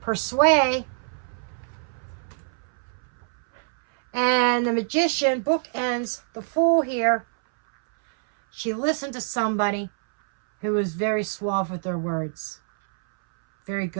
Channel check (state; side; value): silent; left; 61 dB below the other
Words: persuade. And the Magician bookends the Fool here. She listened to somebody who was very suave with their words. Very